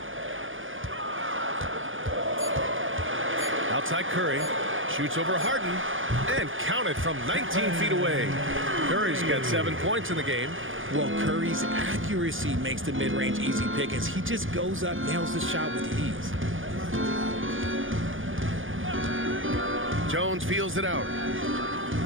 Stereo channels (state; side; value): late; left; 0.58 ms